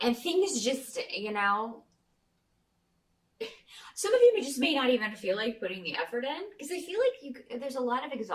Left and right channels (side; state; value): both; identical; correlation 1.00